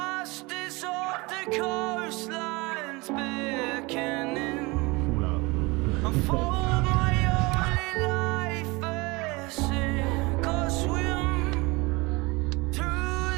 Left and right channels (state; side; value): quieter; left; 24.7 dB